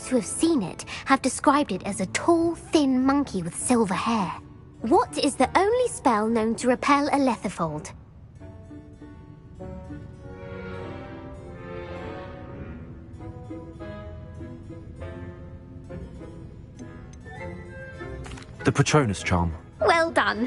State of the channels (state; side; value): identical; both; correlation 1.00